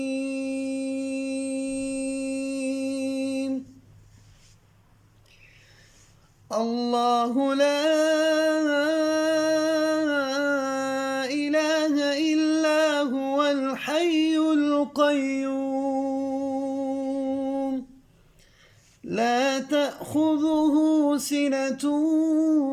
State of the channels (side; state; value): both; identical; correlation 1.00